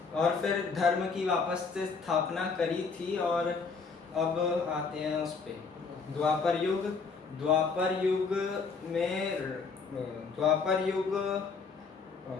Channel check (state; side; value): quieter; right; 4.9 dB